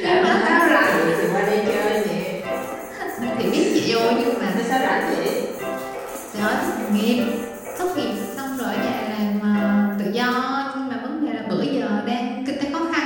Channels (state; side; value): identical; both; correlation 1.00